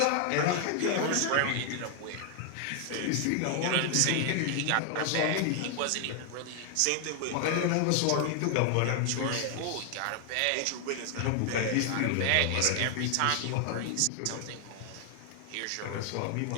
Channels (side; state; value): both; different; correlation 0.00